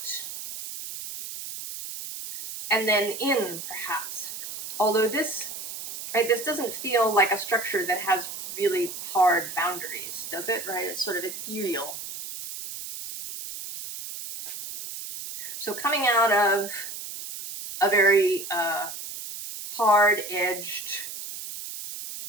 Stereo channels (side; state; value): right; noise; hiss, 9 dB below the sound